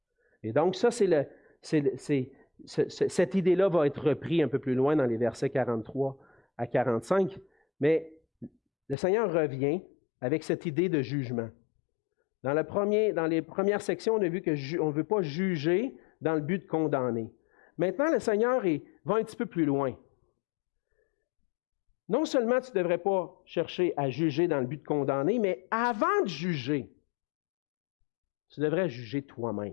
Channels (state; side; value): drops out; right; at 9.0 s